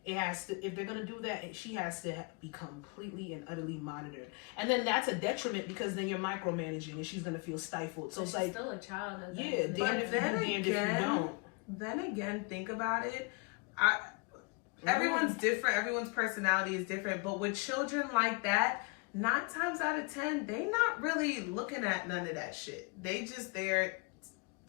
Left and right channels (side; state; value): right; quieter; 31.4 dB